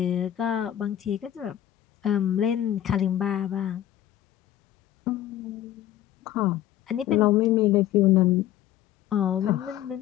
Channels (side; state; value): right; quieter; 12.2 dB